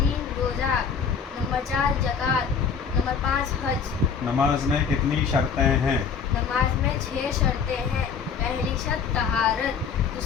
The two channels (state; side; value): quieter; right; 6.3 dB